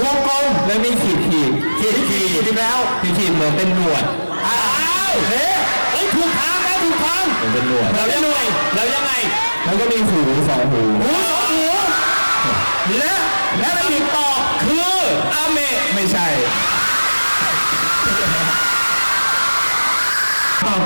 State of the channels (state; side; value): inverted; both; correlation -1.00